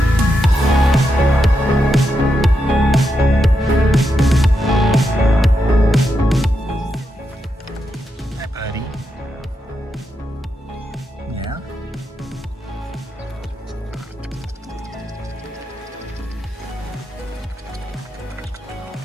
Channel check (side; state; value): both; normal; correlation 0.85